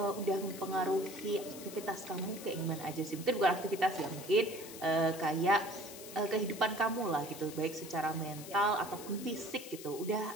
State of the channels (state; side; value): noise; left; hiss, 13 dB below the sound